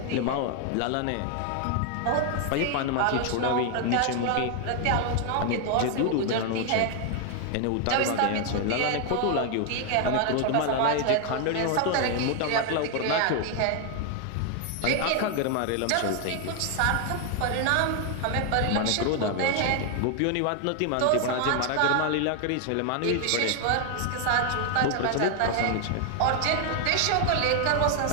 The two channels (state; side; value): different; both; correlation 0.00